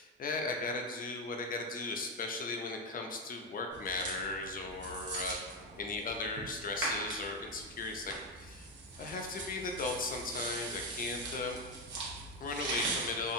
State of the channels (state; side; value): normal; both; correlation 0.09